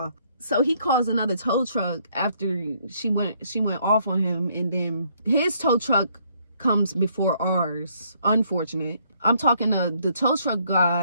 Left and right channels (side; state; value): both; inverted; correlation -0.68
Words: So he calls another tow truck after she went off on him, and then his tow truck comes before ours. Unfortunate. I'm talking to the tow truck